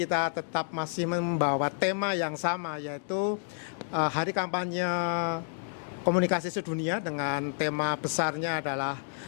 tetap masih membawa tema yang sama, yaitu Hari Kampanye Komunikasi Sedunia, dengan tema besarnya adalah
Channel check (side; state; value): right; silent; digital silence